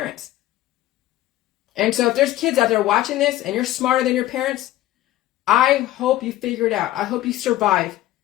And so if there's kids out there watching this and you're smarter than your parents, I hope you figure it out. I hope you survive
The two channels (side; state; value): right; quieter; 14.8 dB